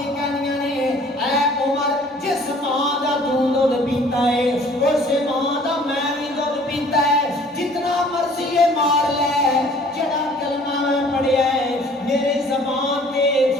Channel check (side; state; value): both; normal; correlation 0.54